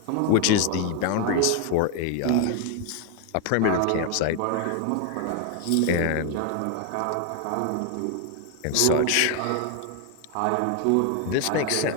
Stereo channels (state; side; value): different; both; correlation 0.01